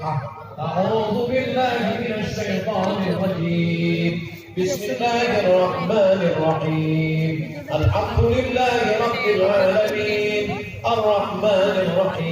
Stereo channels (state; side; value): identical; both; correlation 1.00